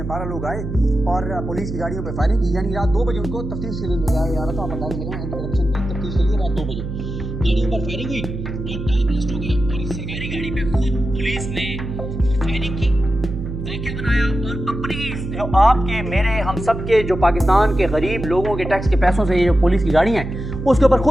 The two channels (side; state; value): right; noise; hum, 6 dB below the sound